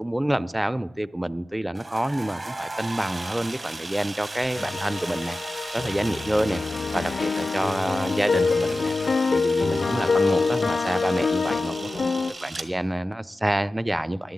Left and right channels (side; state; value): both; normal; correlation 0.95